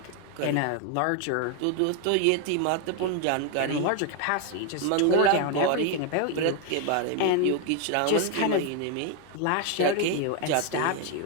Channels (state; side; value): different; both; correlation 0.01